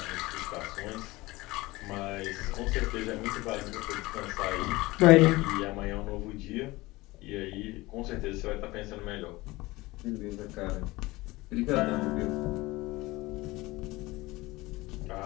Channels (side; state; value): right; quieter; 20.6 dB